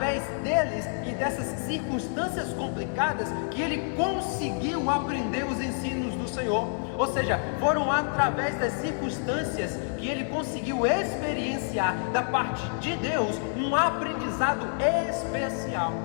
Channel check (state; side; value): silent; right; 59 dB below the other